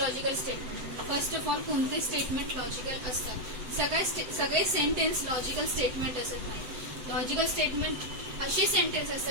logical statement. First of all कोणते स्टेटमेंट लॉजिकल असतात? सगळे सेंटेन्स लॉजिकल स्टेटमेंट असत नाही. लॉजिकल स्टेटमेंट असे सेंटेन्स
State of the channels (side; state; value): left; late; 7.9 ms